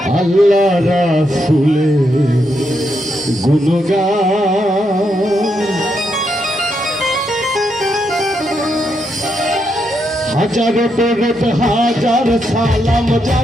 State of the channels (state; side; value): normal; both; correlation 0.80